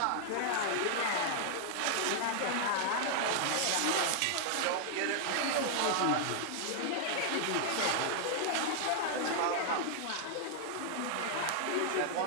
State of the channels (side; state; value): both; different; correlation 0.00